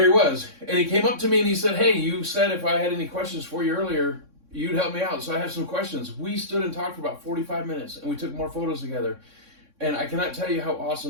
he was. And he came up to me and he said, hey, you said if I had any questions for you earlier, you'd help me out. So I have some questions. We stood and talked for about 45 minutes, and we took more photos together. And I cannot tell you how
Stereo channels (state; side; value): late; left; 3.6 ms